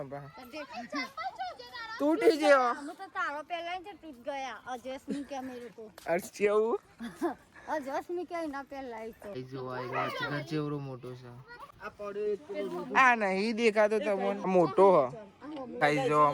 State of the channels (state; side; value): identical; both; correlation 1.00